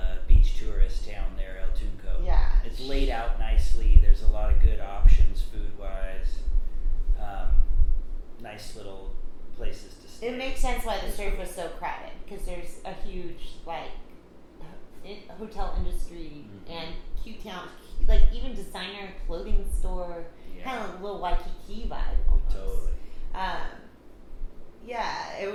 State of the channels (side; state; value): both; identical; correlation 1.00